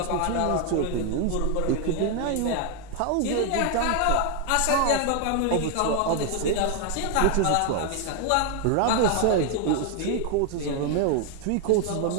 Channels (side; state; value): both; different; correlation 0.01